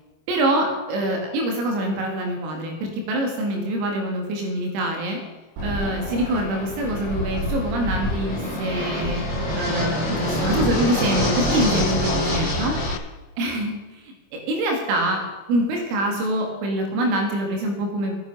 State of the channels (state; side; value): late; left; 25 ms